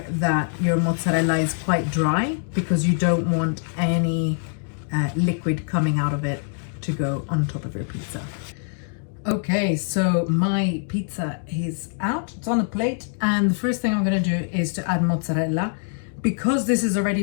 that your mozzarella is quite dry because you don't want any liquid coming out of it to go on top of your pizza. Okay, so my pizza is out, it's on a plate, and the first thing I'm gonna do is to add mozzarella. Because this is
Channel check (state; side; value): silent; right; digital silence